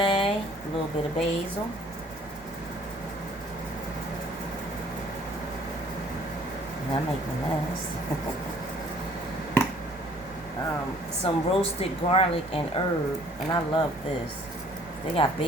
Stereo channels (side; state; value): right; noise; hum, 22 dB below the sound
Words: a little bit of basil. And I make a mess. Some roasted garlic and herb, and I love this. They got